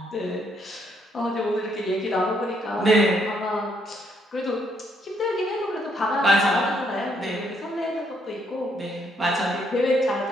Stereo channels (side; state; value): both; normal; correlation 0.72